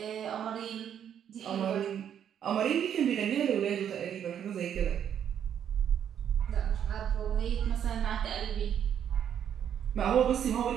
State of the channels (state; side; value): quieter; left; 9.1 dB